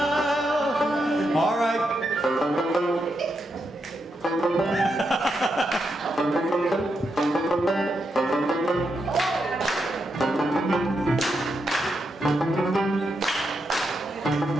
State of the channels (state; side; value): normal; both; correlation 0.83